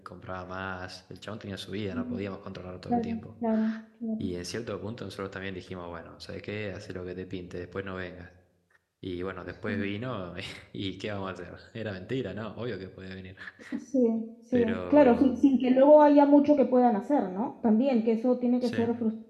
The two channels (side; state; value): both; identical; correlation 1.00